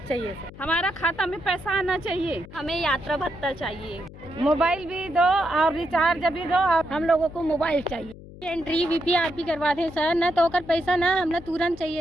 चाहिए सर। हमारा खाता में पैसा आना चाहिए। हमें यात्रा भत्ता चाहिए। मोबाइल भी दो और रिचार्ज भी दो और हम लोगों को मोबाइल चाहिए। एंट्री वीपीआरपी करवा दें सर, न तो ओकर पैसा ना हमला तुरंत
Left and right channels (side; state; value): left; noise; hum, 17 dB below the sound